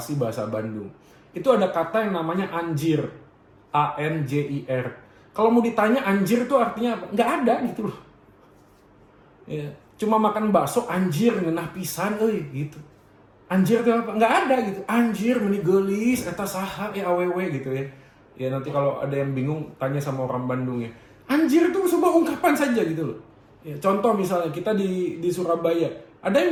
bahasa Bandung. Itu ada kata yang namanya anjir, ANJIR. Kalau mau ditanya anjir itu artinya apa? Nggak ada gitu loh. Ya, cuma makan bakso anjir ngenah pisan, gitu. Anjir itu apa? Nggak ada gitu. Anjir meni geulis eta saha awewe gitu ya. Ya nanti kalau ada yang bingung tanya sama orang Bandung ya. Anjir itu sebuah ungkapan saja gitu loh. Ya, contoh misalnya kita di Surabaya, ada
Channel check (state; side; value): identical; both; correlation 1.00